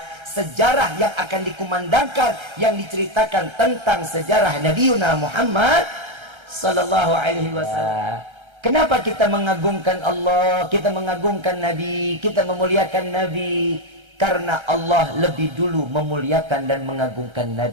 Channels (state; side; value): late; left; 1.3 ms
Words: sejarah yang akan dikumandangkan, yang diceritakan tentang sejarah Nabiuna Muhammad Sallallahu Alaihi Wasallam. Kenapa kita mengagungkan Allah, kita mengagungkan Nabi, kita memuliakan Nabi? Karena Allah lebih dulu memuliakan dan mengagungkan